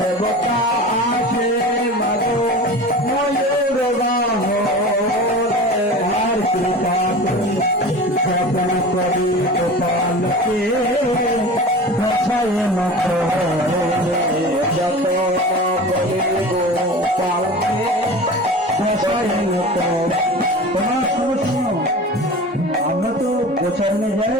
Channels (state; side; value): normal; both; correlation 0.34